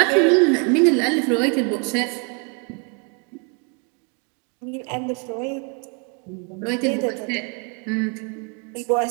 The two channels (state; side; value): quieter; left; 35.2 dB